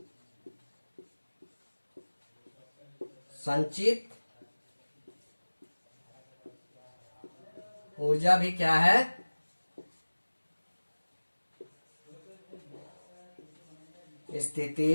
संचित ऊर्जा भी क्या है,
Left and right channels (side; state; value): both; inverted; correlation -1.00